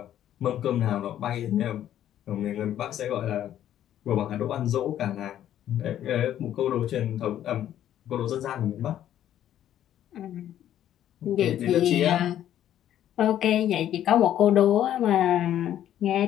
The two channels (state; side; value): quieter; right; 11.4 dB